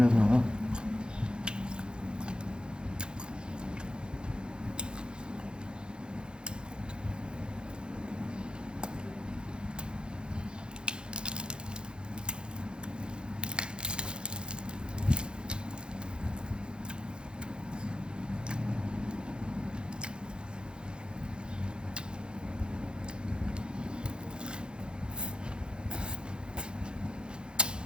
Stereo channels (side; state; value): left; late; 0.050 ms